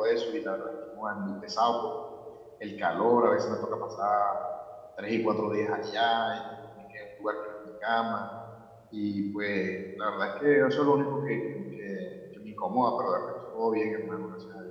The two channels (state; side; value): identical; both; correlation 1.00